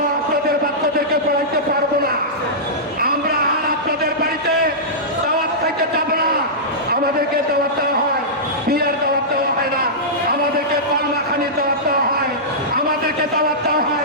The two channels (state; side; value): normal; both; correlation -0.14